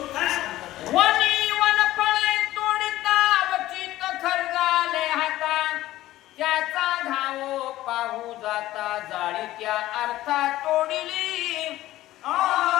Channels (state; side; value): quieter; right; 15.4 dB